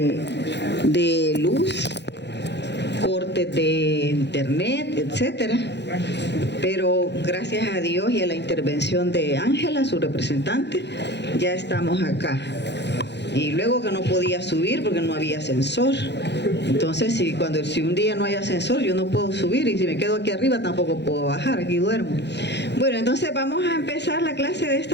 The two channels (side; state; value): right; late; 0.50 ms